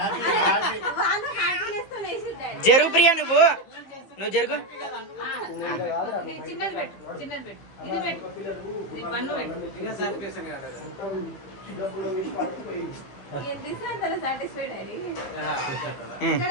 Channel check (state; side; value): late; right; 15 ms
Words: జరుగు ప్రియా నువ్వు జరుగు. చిన్నది పెట్టు చిన్నది పెట్టు ఇది పెట్టు ఇది పన్ను పెట్టు